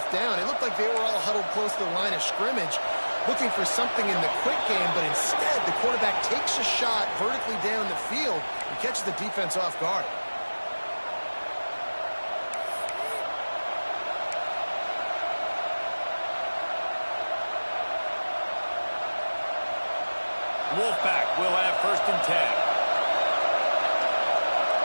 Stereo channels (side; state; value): both; inverted; correlation -1.00